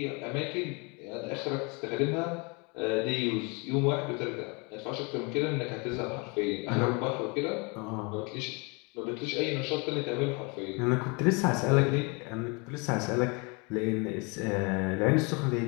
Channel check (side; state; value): right; quieter; 30.9 dB